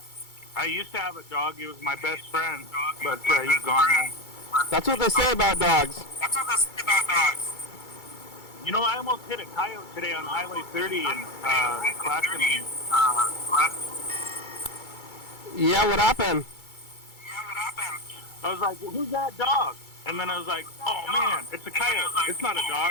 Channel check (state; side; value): late; right; 2.3 ms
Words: I used to have a dog. He was my best friend, but he's gone now. That's what they say about dogs. You know, I almost hit a coyote today on Highway 30 in Clackamas. Yeah, what happened? I was like, well, who's that dog? And then I was like, oh man, it's a coyote. It's not a